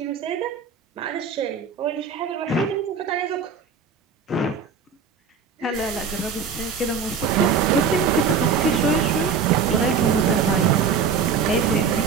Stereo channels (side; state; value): left; quieter; 5.9 dB